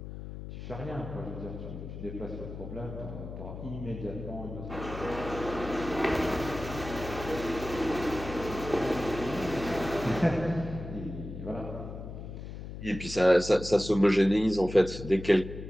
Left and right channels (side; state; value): left; noise; hum, 9 dB below the sound